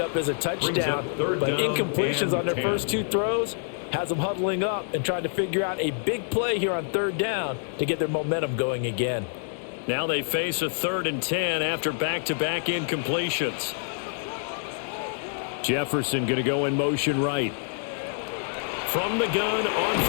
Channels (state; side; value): silent; right; digital silence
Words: up as a touchdown. But incompletions on their first 2 throws has them huddling up and trying to figure out a big play here on 3rd down to get their momentum going again. Now they face a 3rd and 10 after back-to-back incompletions. Jefferson going to go in motion right. From the gun on